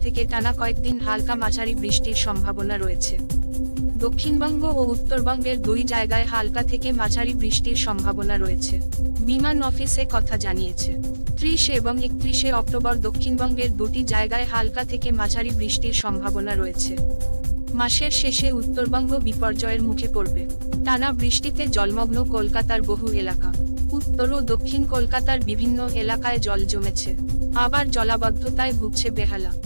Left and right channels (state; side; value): inverted; both; correlation -1.00